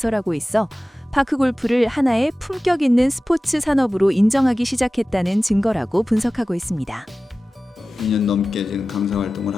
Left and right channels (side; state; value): both; normal; correlation 0.96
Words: 있어 파크골프를 하나의 품격 있는 스포츠 산업으로 인정하기 시작했다는 증거라고 분석하고 있습니다. 2년 넘게 지금 강사 활동을